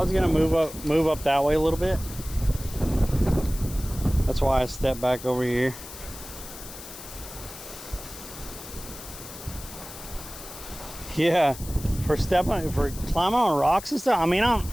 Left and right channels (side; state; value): left; noise; hiss, 14 dB below the sound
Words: gonna move up that way a little bit. That's why I stepped back over here. Yeah, for climbing on rocks and stuff. I mean,